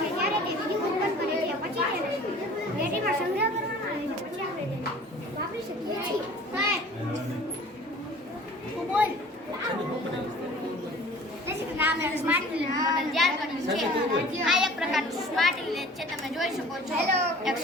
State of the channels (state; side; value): normal; both; correlation 0.47